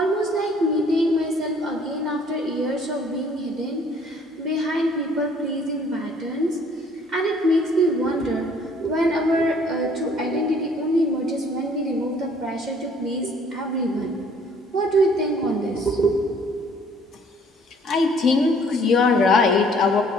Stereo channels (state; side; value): normal; both; correlation 0.58